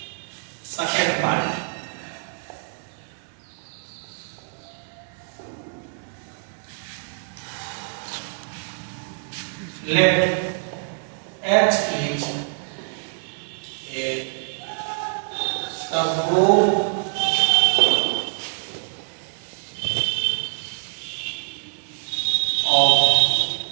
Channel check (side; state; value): left; silent; 62 dB below the other